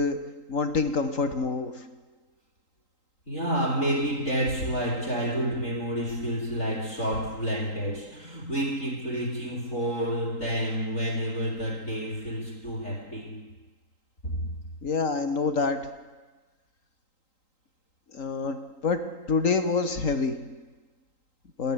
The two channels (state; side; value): late; right; 3.8 ms